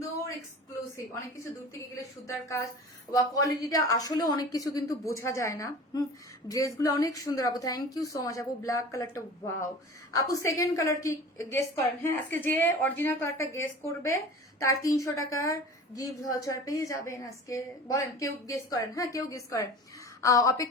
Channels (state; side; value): normal; both; correlation 0.39